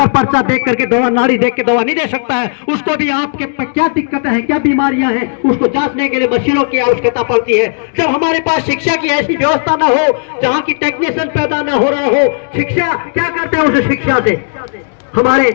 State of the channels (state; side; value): silent; right; digital silence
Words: पर्चा देख करके दवा, नाड़ी देख के दवा नहीं दे सकता है। उसको भी आपके क्या दिक्कतें हैं, क्या बीमारियां हैं, उसको जांचने के लिए मशीनों की आवश्यकता पड़ती है। जब हमारे पास शिक्षा की ऐसी व्यवस्था न हो, जहाँ की टेक्नीशियन पैदा न हो रहा हो, शिक्षा क्या करते हैं उस शिक्षा से हमारे